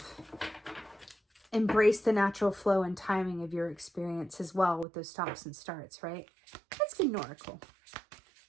embrace the natural flow and timing of your experience as well with those stops and starts, right? Let's get an oracle.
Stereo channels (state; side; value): drops out; left; at 4.9 s